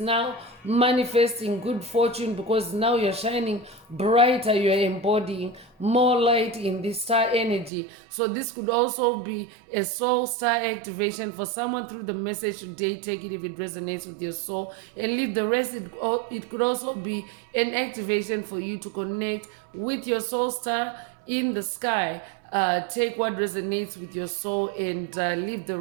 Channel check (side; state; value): left; drops out; at 7.7 s